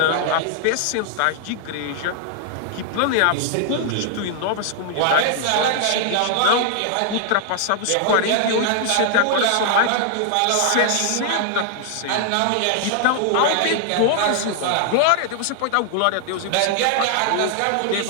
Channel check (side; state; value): both; different; correlation 0.00